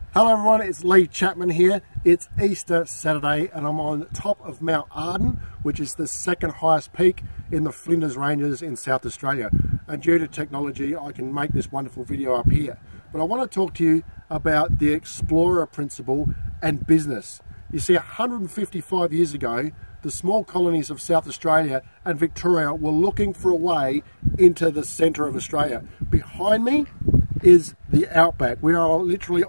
Hello everyone, it's Lee Chapman here. It's Easter Saturday and I'm on top of Mount Arden, which is the second highest peak in the Flinders Ranges in South Australia. And due to technology, I can make this wonderful video up here. But I want to talk to you about the explorer principle and business. You see, 155 years ago, the small colonies of South Australia and Victoria were looking for a way into the centre of Australia. Behind me is the outback. We are literally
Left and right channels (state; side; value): inverted; both; correlation -1.00